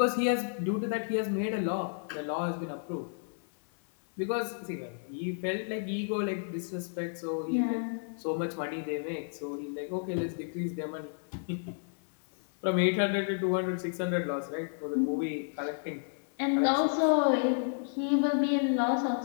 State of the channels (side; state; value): right; silent; 57 dB below the other